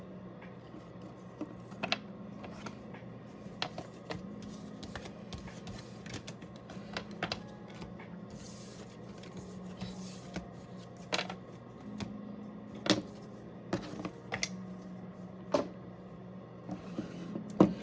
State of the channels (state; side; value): identical; both; correlation 1.00